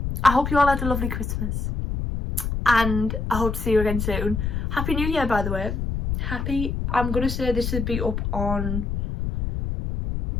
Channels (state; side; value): noise; left; rumble, 2 dB below the sound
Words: hope you all had a lovely Christmas, and I hope to see you again soon. Happy New Year, by the way. I'm gonna say this would be up on